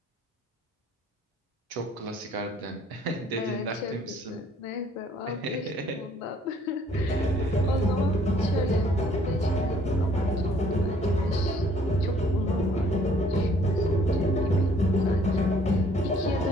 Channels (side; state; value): both; normal; correlation 0.61